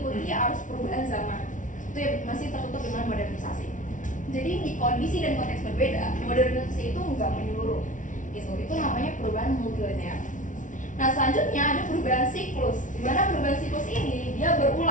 arus perubahan zaman. itu ya masih tertutup dengan modernisasi. Jadi di kondisi dan konteks berbeda, modernisasi itu nggak menyeluruh gitu. Itu namanya perubahan multilinear. Nah selanjutnya ada perubahan siklus, di mana perubahan siklus ini dia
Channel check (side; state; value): right; late; 0.37 ms